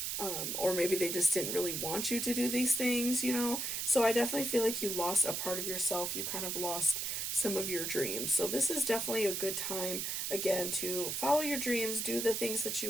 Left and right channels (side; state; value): right; noise; hiss, 2 dB below the sound